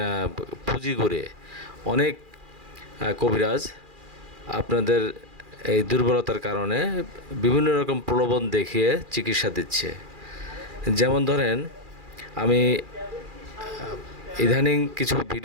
পুঁজি করে অনেক কবিরাজ আপনাদের এই দুর্বলতার কারণে বিভিন্ন রকম প্রলোভন দেখিয়ে চিকিৎসা দিচ্ছে। যেমন ধরেন, আমি ইদানিং কিছু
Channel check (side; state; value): left; late; 2.4 ms